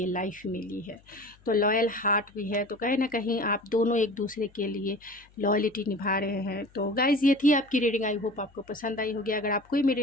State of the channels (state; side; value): noise; left; hum, 29 dB below the sound